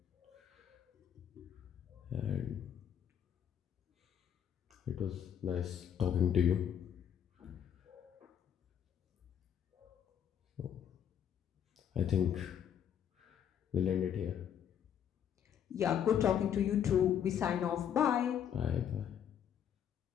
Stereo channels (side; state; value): right; quieter; 9.0 dB